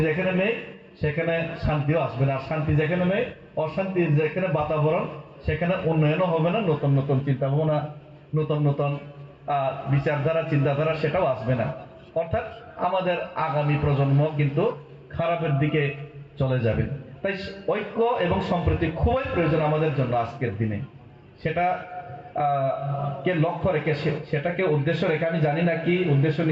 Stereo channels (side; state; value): both; identical; correlation 1.00